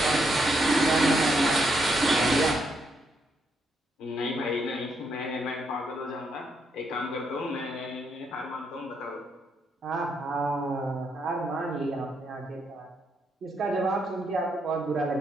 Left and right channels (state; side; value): normal; both; correlation 0.77